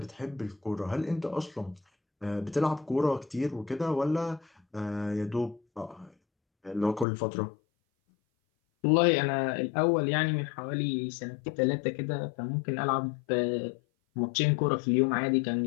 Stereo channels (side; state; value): right; drops out; at 7.1 s